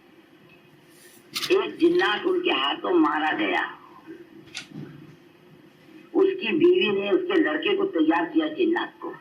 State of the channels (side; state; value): both; identical; correlation 1.00